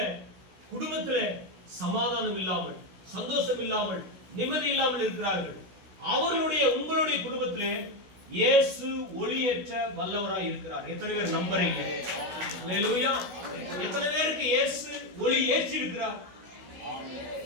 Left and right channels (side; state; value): left; late; 16 ms